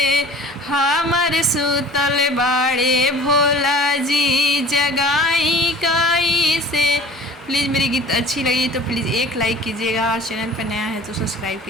हमर सुतल बाड़े भोला जी जगाई कैसे। प्लीज़ मेरी गीत अच्छी लगी तो प्लीज़ एक लाइक कीजिएगा और चैनल पर नया है तो सब्सक्राइब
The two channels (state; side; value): normal; both; correlation 0.45